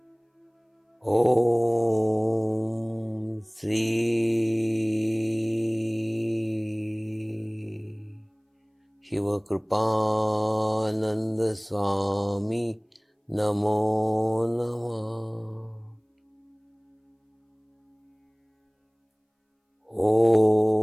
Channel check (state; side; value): identical; both; correlation 1.00